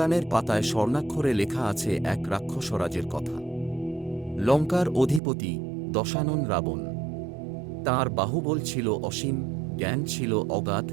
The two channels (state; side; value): drops out; left; at 5.2 s